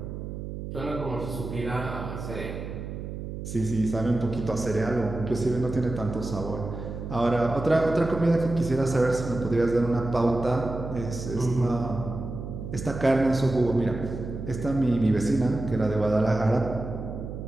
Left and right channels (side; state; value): right; noise; hum, 8 dB below the sound